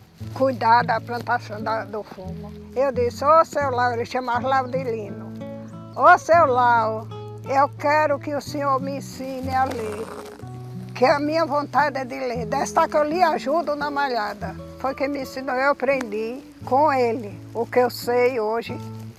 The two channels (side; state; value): both; identical; correlation 1.00